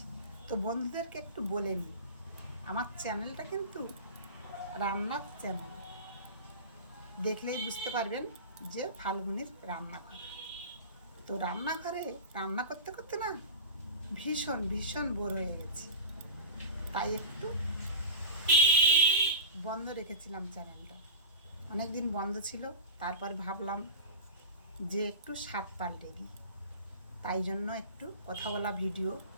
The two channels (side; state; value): both; inverted; correlation -0.30